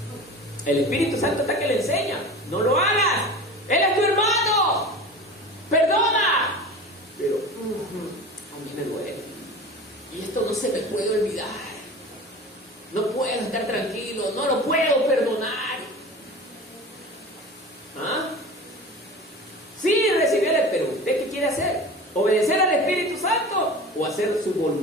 El Espíritu Santo está que le enseña. No lo hagas. Él es tu hermano. Perdona. Pero a mí me duele. Y esto no se me puede olvidar. No puedo estar tranquilo. No lo puedo perdonar. Sí, recibirle, pero ¿usted qué quiere hacer? ¿Obedecer al Espíritu Santo o hacer su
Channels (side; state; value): both; normal; correlation 0.35